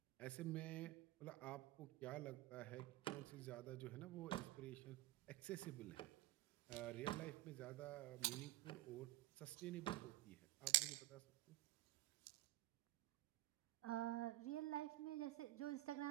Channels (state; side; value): quieter; left; 17.9 dB